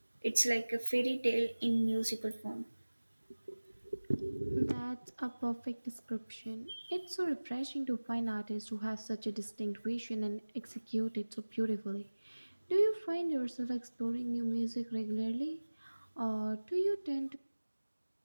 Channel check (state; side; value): inverted; both; correlation -1.00